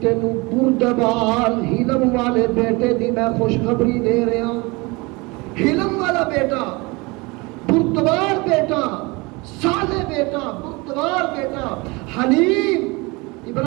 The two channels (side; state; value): left; quieter; 25.6 dB